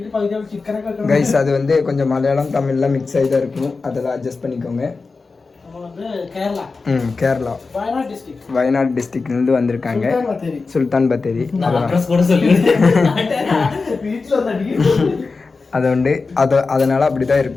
guys. அது வந்து கொஞ்சம் மலையாளம் தமிழ்லாம் மிக்ஸ் ஆகி தான் இருக்கும். அதெல்லாம் அட்ஜஸ்ட் பண்ணிக்கோங்க. கேரளா வயநாடு டிஸ்ட்ரிக்ட்லேருந்து வந்திருக்காங்க. சுல்தான் பத்தேரி. அது வந்து அதனால் அப்படி தான்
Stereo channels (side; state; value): right; quieter; 4.2 dB